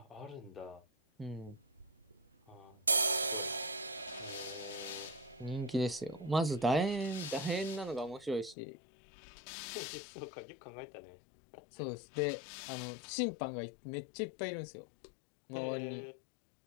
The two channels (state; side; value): drops out; right; at 8.6 s